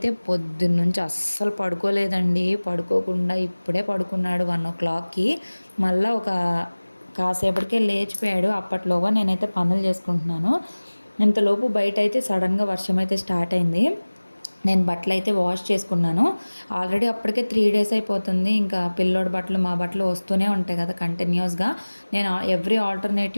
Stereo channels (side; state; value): both; inverted; correlation -1.00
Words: పొద్దున్న నుంచి అస్సలు పడుకోలేదండి. పడుకోకుండా ఇప్పుడే పడుకున్నాడు 1 o'clockకి. మళ్ళీ కాసేపటికే లేచిపోయాడు. అప్పట్లోగా నేనైతే పనులు చేసుకుంటున్నాను. ఇంతలోపు బయట అయితే సడన్గా వర్షం అయితే స్టార్ట్ అయింది. నేను బట్టలు అయితే వాష్ చేసుకున్నాను. ఆల్రెడీ అప్పటికే 3 days అయిపోతుంది. ఇంకా పిల్లోడి బట్టలు మా బట్టలు వస్తూనే ఉంటాయి కదా కంటిన్యూస్గా. నేను ఎవ్రీ